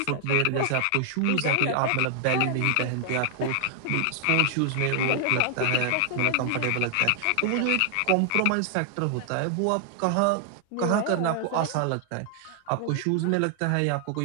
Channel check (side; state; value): both; different; correlation 0.00